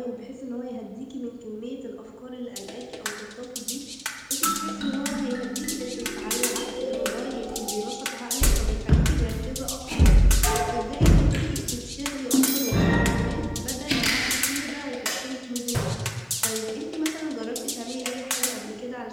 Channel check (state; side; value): identical; both; correlation 1.00